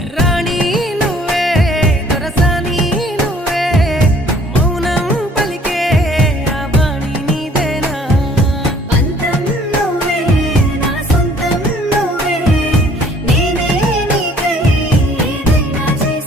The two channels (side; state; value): both; normal; correlation 0.57